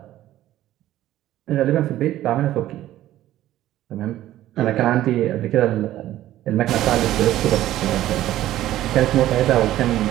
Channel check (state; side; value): quieter; left; 13.9 dB